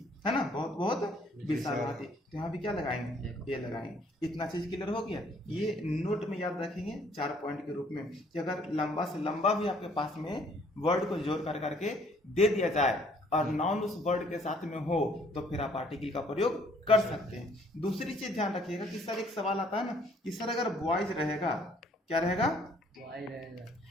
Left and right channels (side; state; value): both; normal; correlation 0.62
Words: है ना, बहुत बहुत विशाल हाथी। तो यहाँ भी क्या लगाएंगे? ये लगाएंगे। इतना चीज क्लियर हो गया। ये नोट में याद रखेंगे 4 पॉइंट के रूप में, कि अगर लंबा से लंबा भी आपके पास में वर्ड को जोड़ कर करके दे दिया जाए और नाउन उस वर्ड के साथ में हो, तो फिर आप आर्टिकल का प्रयोग कर सकते हैं। दूसरी चीज ध्यान रखिएगा कि सर एक सवाल आता है ना कि सर अगर बॉयज रहेगा, क्या रहेगा?